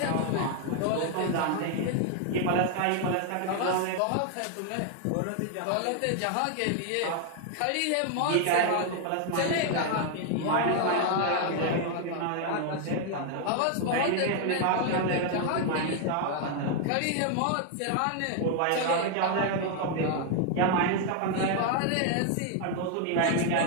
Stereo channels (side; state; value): both; different; correlation 0.00